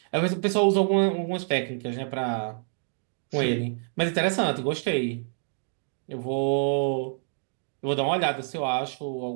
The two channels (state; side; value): silent; left; 58 dB below the other